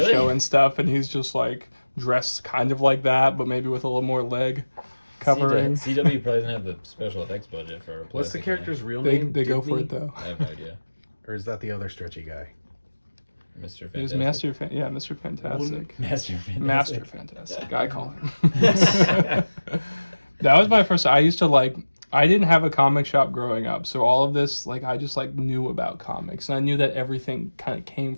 show and stuff, and he's just like dressed kind of like that, but maybe with a little more leg covering. CW probably doesn't have the special effects budget for. What's the Plastic character's real They name? go for Dibney? it though. Man. I have no idea. Or is that the other stretchy guy? Mr. It was Fantastic. Mr. Fantastic. Master Fantastic. Master Fantastic. I call him. That was my first. I used to like. I didn't have a comic shop growing up, so all of this, like, I just like knew about comics, and I knew that everything kind of came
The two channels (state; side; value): inverted; both; correlation -1.00